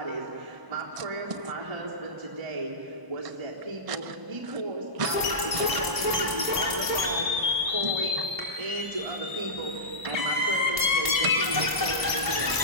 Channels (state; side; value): late; left; 1.0 ms